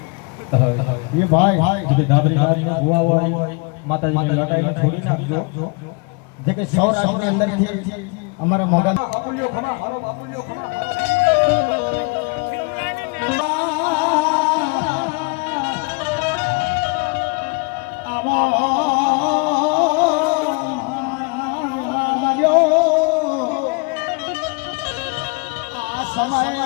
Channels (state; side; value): quieter; right; 31.9 dB